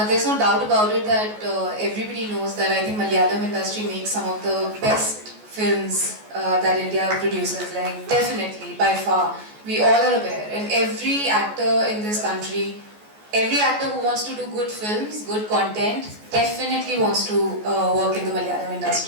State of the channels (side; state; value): left; late; 14 ms